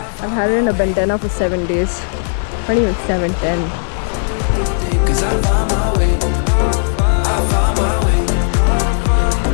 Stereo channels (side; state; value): right; silent; 58 dB below the other